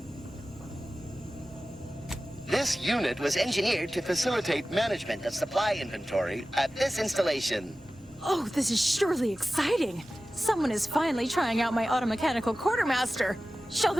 This unit was engineered to facilitate management of supply inventory at this installation. Oh, this is surely exciting. Someone is finally trying out my automechanical quartermaster. Show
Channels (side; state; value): both; normal; correlation 0.95